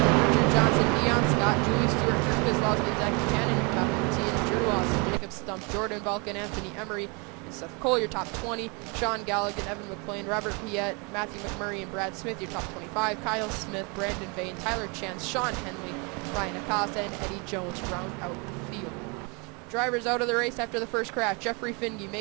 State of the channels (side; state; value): left; quieter; 31.5 dB